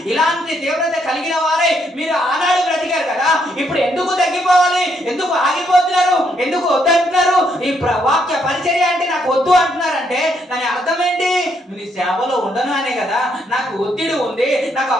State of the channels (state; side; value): normal; both; correlation 0.74